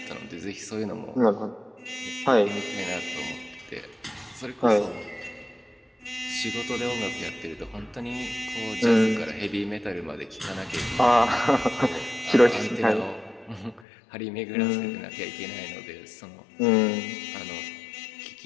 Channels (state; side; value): drops out; right; at 13.9 s